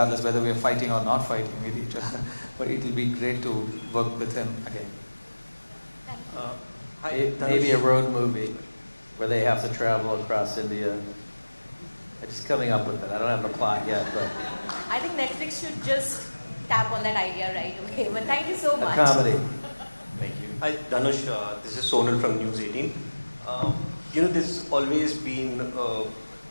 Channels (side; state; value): both; inverted; correlation -1.00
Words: whether we are fighting or not fighting with each other. But it will be great to work with him again. Maybe a road movie where they have to travel across India. I'm just coming up with it. I don't have the plot yet, but I think Netflix should just tap on that idea right away. But thank you so much. a comedy. Thank you. Hi, Dhanush. This is Sonal from News 18. There's always been